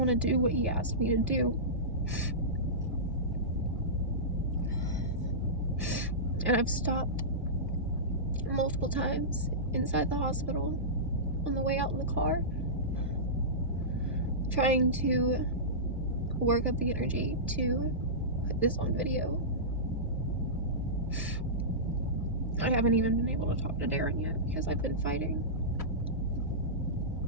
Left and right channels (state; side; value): normal; both; correlation -0.17